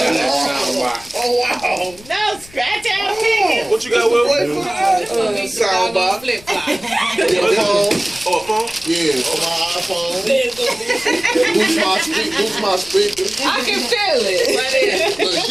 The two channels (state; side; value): noise; left; rumble, 22 dB below the sound